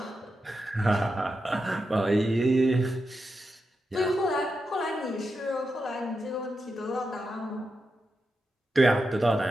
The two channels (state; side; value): normal; both; correlation 0.88